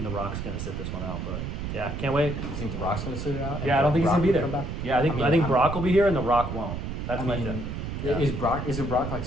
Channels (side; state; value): right; noise; rumble, 5 dB below the sound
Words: The Rock's gonna sit this one out, but yeah, can't wait. You think The Rock's gonna sit it out? Yeah, I don't think he's gonna be there. Yeah, I think Brock will be here and The Rock won't. That's my thing. Yeah. Is Brock like